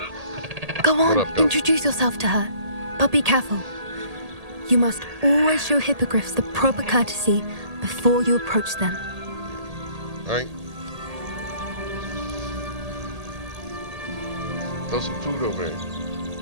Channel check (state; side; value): late; left; 1.8 ms